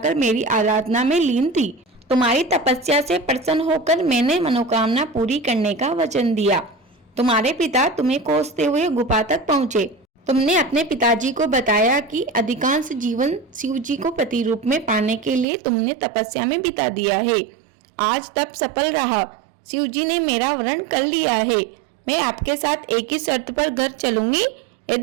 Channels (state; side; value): drops out; left; at 15.5 s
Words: मेरी आराधना में लीन थी। तुम्हारी तपस्या से प्रसन्न होकर मैंने मनोकामना पूरी करने का वचन दिया। तुम्हारे पिता तुम्हें खोजते हुए गुफा तक पहुँचे। तुमने अपने पिताजी को बताया कि अधिकांश जीवन शिव जी को पति रूप में पाने के लिए तुमने तपस्या में बिता दिया है। आज तप सफल रहा। शिव जी ने मेरा वरण कर लिया है। मैं आपके साथ एक ही शर्त पर घर चलूंगी,